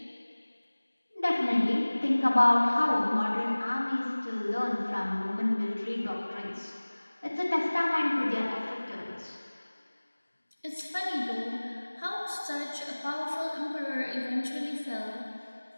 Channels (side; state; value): both; inverted; correlation -1.00